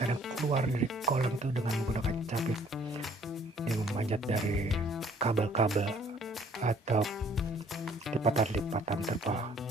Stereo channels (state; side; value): normal; both; correlation 0.59